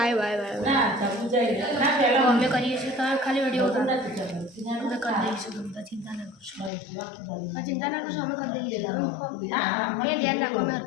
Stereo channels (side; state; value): right; drops out; at 6.7 s